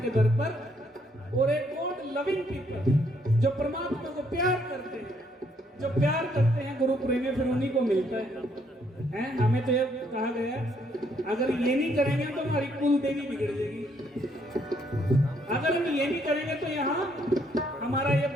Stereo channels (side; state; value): both; normal; correlation 0.70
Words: दर पर, और एक गॉड लविंग पीपल, जो परमात्मा को प्यार करते हैं। जो प्यार करते हैं गुरु प्रेमी, फिर उन्हीं को मिलता है। हमें तो ये कहा गया है, अगर ये नहीं करेंगे तो हमारी कुल देवी बिगड़ जाएगी। अगर हम ये नहीं करेंगे तो यहाँ हमारा ये